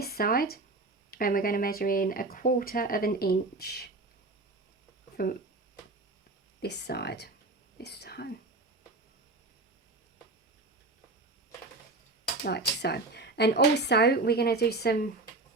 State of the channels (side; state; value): left; quieter; 3.2 dB